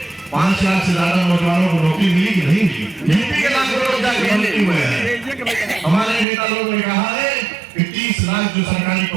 5 लाख से ज्यादा नौजवानों को नौकरी मिली कि नहीं मिली? यूपी के लाखों लोग जाके मंत्री हुए हैं। हमारे नेता लोगों ने कहा है कि 30 लाख जो सरकारी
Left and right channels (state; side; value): drops out; left; at 6.2 s